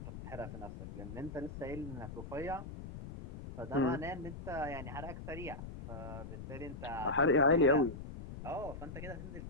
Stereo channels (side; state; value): left; noise; rumble, 10 dB below the sound